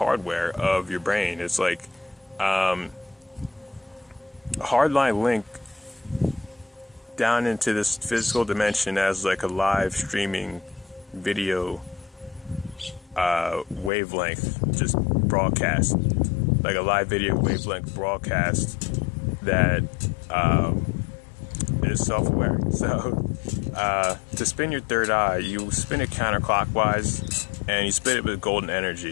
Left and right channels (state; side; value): drops out; right; at 13.9 s